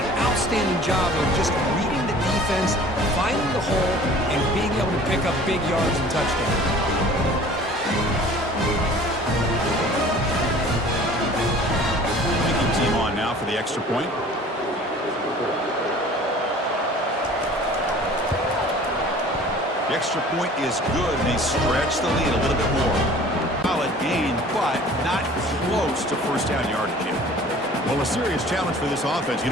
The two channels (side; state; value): both; normal; correlation 0.47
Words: outstanding job of just reading the defense, finding the hole, and being able to pick up big yards and touchdowns. Kicking team on now for the extra point. The extra point is good, and they stretch the lead a little bit more. Solid gain, but not close to first down yardage here. Well, a serious challenge for this offense. You